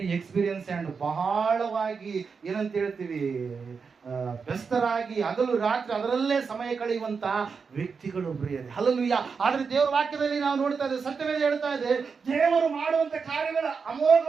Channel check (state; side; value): quieter; left; 5.4 dB